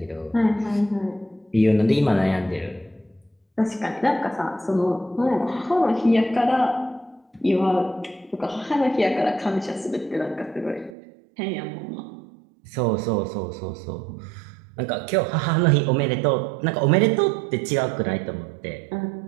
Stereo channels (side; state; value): left; drops out; at 11.0 s